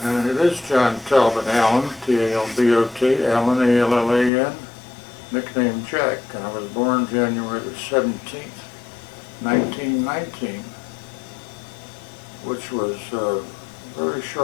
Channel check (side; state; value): right; drops out; at 4.3 s